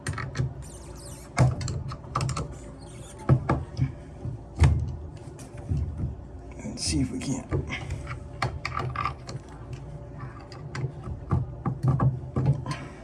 And see if we can't.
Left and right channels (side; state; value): both; identical; correlation 1.00